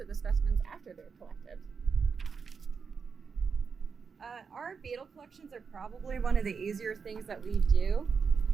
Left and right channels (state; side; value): quieter; left; 5.7 dB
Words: the specimens after they're collected? Our beetle collections are probably one of the easier things that we do.